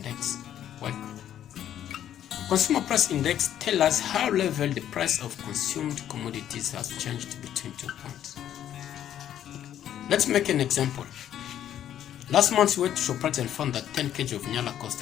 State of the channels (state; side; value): quieter; right; 10.8 dB